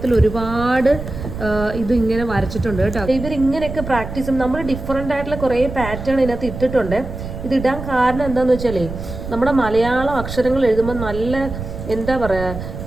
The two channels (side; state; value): right; noise; rumble, 9 dB below the sound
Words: ഒരുപാട് ഇത് ഇങ്ങനെ വരച്ചിട്ടുണ്ട് കേട്ടോ. ഇവരിങ്ങനെയൊക്കെ പ്രാക്ടീസ് ചെയ്യും. നമ്മൾ ഡിഫറെൻ്റ് ആയിട്ടുള്ള കുറേ പാറ്റേൺ ഇതിനകത്ത് ഇട്ടിട്ടുണ്ട്. ഇത് ഇടാൻ കാരണം എന്താണെന്ന് വെച്ചാലേ നമ്മുടെ മലയാളം അക്ഷരങ്ങൾ എഴുതുമ്പോൾ നല്ല എന്താ